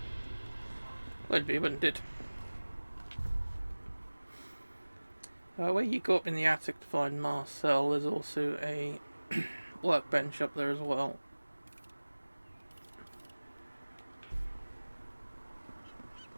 Would be, wouldn't it? Where you go up in the attic to find Marcel, there's also a workbench up there as well.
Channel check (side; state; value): both; inverted; correlation -1.00